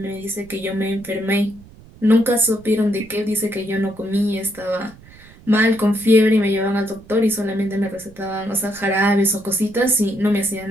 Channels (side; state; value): right; noise; rumble, 23 dB below the sound